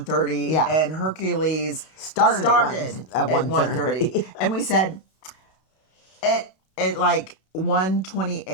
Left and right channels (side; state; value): right; late; 32 ms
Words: Yeah. And Hercules Started at at 1:30. And we said at like